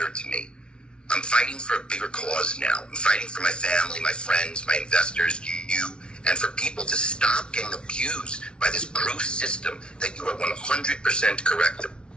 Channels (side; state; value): right; late; 0.056 ms